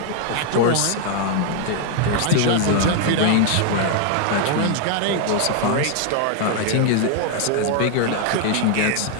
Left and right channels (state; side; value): different; both; correlation 0.00